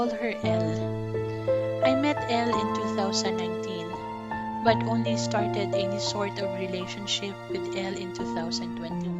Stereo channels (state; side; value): identical; both; correlation 1.00